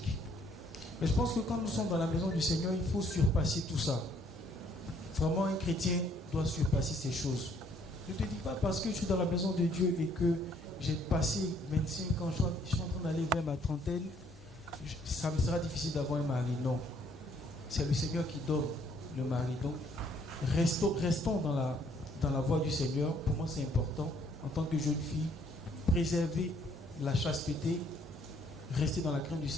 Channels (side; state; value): both; normal; correlation 0.65